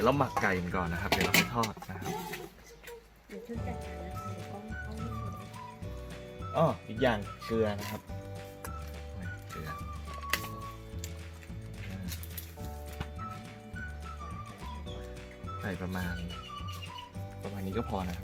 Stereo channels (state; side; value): identical; both; correlation 1.00